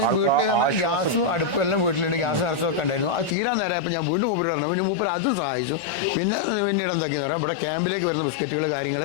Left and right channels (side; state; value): right; drops out; at 3.4 s